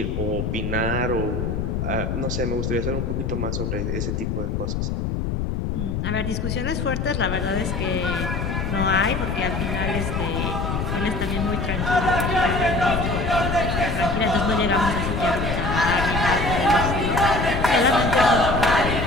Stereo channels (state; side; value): noise; left; rumble, 1 dB below the sound